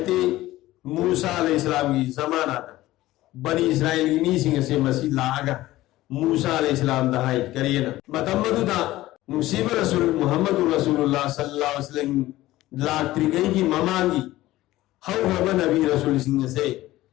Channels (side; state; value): right; quieter; 16.5 dB